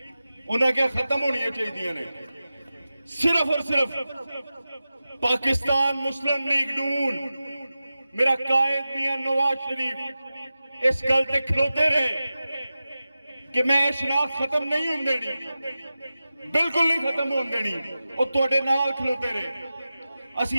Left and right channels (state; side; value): inverted; both; correlation -0.94